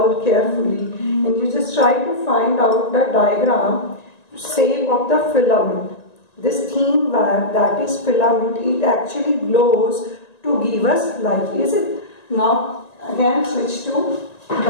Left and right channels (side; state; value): right; late; 1.9 ms